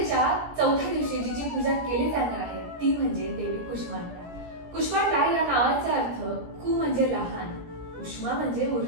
चौथ्या दिवशी जिची पूजा केली जाणार आहे ती म्हणजे देवी कुष्मांडा। कुष्मांडा या नावाचा अर्थ कु म्हणजे लहान, उष्मा म्हणजे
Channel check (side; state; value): left; late; 17 ms